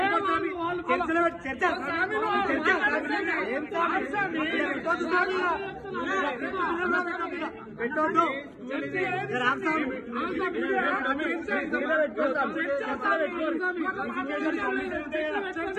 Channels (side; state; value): both; identical; correlation 1.00